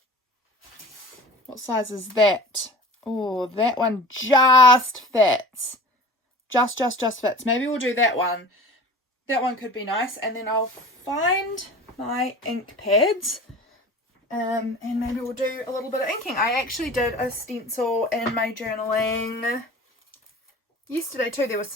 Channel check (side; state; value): both; normal; correlation 0.40